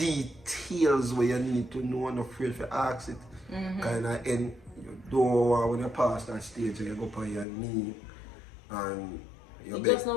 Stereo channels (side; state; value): right; drops out; at 7.5 s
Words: where you need to know and afraid to ask it. Kind of end. You don't want when you pass that stage and you go on your knee and it just